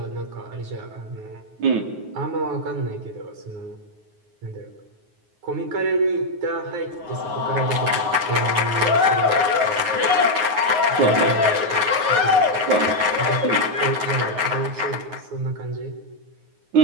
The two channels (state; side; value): late; left; 9.5 ms